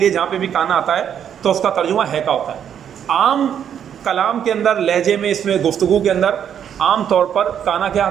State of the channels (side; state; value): left; quieter; 8.9 dB